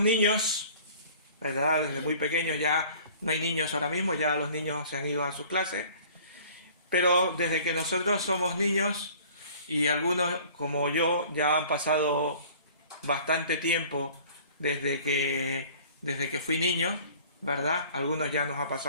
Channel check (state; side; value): inverted; both; correlation -0.49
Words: niños, ¿verdad? Desde muy pequeños, ya no hay niños ahora mismo, ya los niños se han ido a su clase, pero desde que nosotros somos niños, y algunos como yo ya han pasado bastante tiempo desde que fui niño, ¿verdad? Algunos ya nos ha